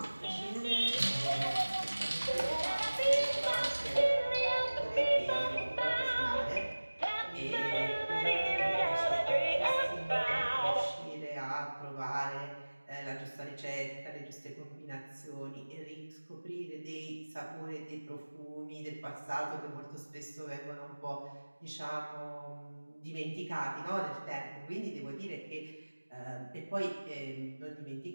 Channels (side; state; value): both; inverted; correlation -1.00